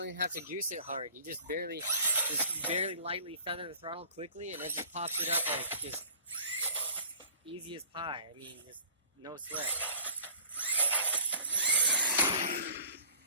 even have to goose it hard. You just barely lightly feather the throttle quickly, and it just pops it up like just easy as pie. I mean, just no sweat.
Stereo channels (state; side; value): inverted; both; correlation -0.52